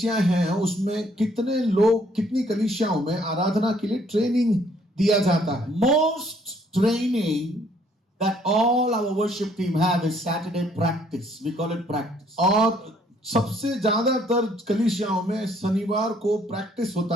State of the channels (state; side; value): normal; both; correlation 0.64